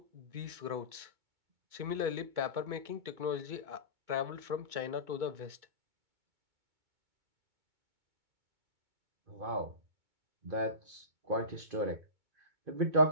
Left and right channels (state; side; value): late; left; 2.2 ms